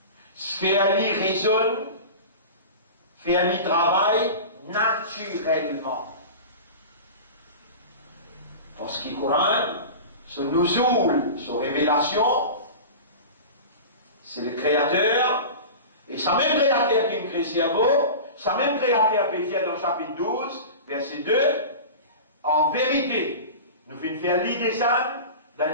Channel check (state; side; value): inverted; both; correlation -0.32